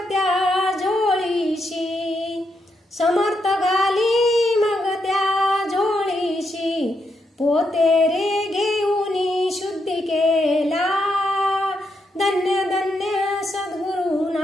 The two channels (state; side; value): normal; both; correlation 0.81